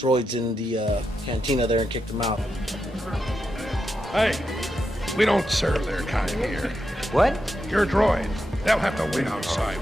in the cantina there and kicked them out. Hey, we don't serve their kind here. What? Your droids, they'll have to wait outside.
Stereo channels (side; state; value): both; normal; correlation 0.85